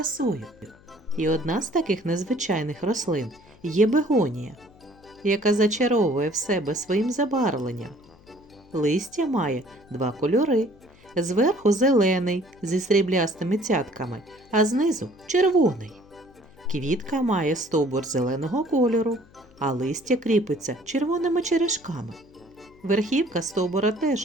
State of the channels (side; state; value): left; noise; hum, 26 dB below the sound